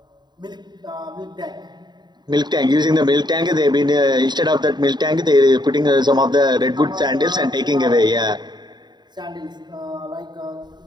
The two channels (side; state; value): left; late; 0.21 ms